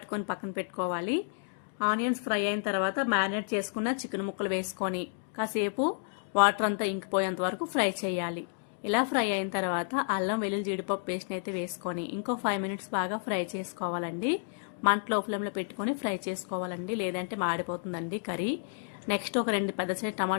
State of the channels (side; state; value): right; silent; digital silence